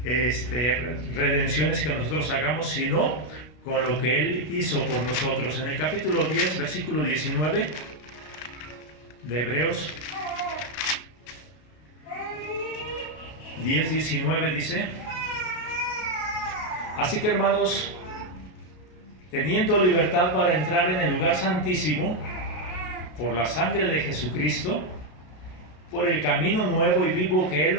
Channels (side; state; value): right; late; 33 ms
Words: redenciones que nosotros hagamos, sino con lo que Él hizo por nosotros. En el capítulo 10, versículo 19 de Hebreos 10:19 dice: así que, hermanos, teniendo libertad para entrar en el lugar santísimo por la sangre de Jesucristo, por el camino nuevo y vivo que Él